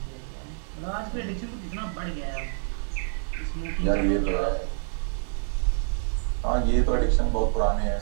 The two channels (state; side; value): silent; left; digital silence